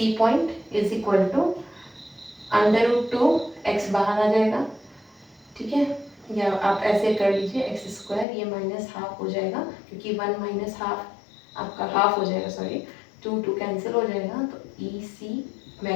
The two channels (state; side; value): drops out; right; at 8.2 s